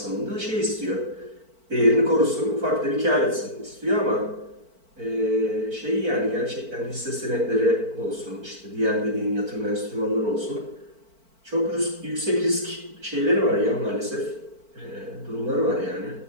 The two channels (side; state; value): left; late; 4.5 ms